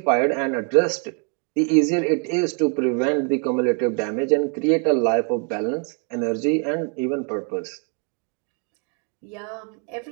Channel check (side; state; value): left; quieter; 37.4 dB